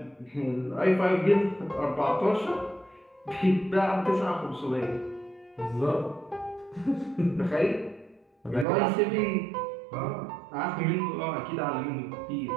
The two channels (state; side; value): drops out; left; at 8.7 s